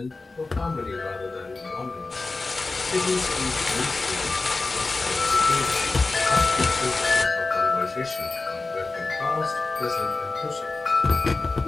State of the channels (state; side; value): quieter; right; 3.6 dB